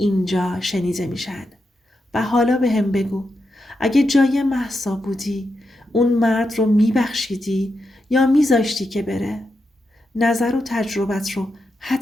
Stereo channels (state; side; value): normal; both; correlation 0.86